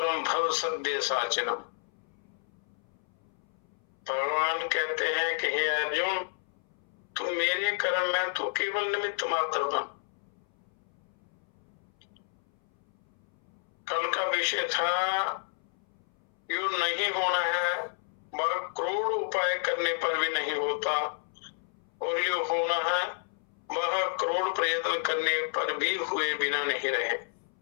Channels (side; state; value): right; silent; 57 dB below the other